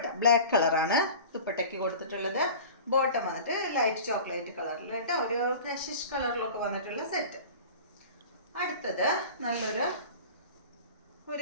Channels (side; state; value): both; inverted; correlation -0.38